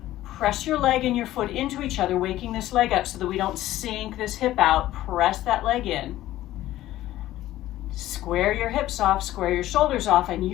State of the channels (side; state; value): right; quieter; 14.7 dB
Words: Press your leg and your foot into each other, waking this leg up so that we don't sink this hip out. Press that leg in. Square your hips off, square your shoulders off, and